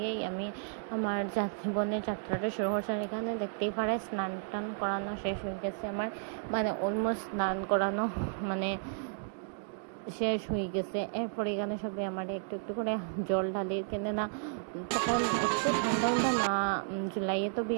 আমি আমার জীবনের যাত্রাটা শুরু করছি। আর এখানে দেখতেই পারে স্নান টান করানো শেষ হয়ে গেছে আমার, মানে অলমোস্ট স্নান করানো মানে শেষ হয়ে গেছে। এরপরে এখানে সবাই আমার একটু একটু করে জল ঢালি, কেনে না তখন ঠান্ডা না, জুলাইয়ে তো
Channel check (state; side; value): silent; left; digital silence